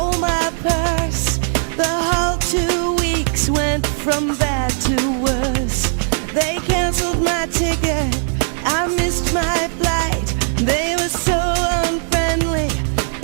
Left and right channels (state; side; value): silent; left; digital silence